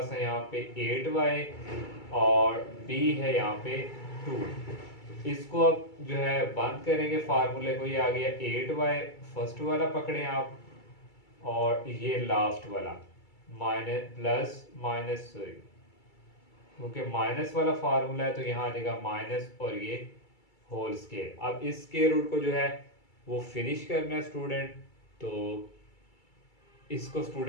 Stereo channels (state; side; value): late; right; 2.3 ms